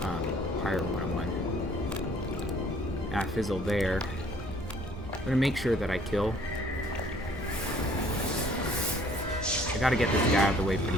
Pirate 101. I fizzle there. I'm gonna make sure that I kill. I gotta get this guy out of the way pretty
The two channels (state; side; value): normal; both; correlation 0.58